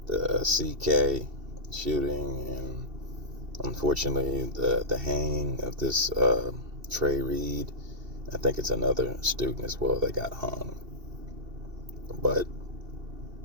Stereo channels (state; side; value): late; left; 2.7 ms